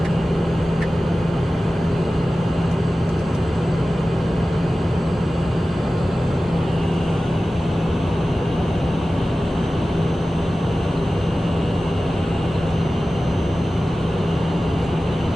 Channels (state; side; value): normal; both; correlation 0.95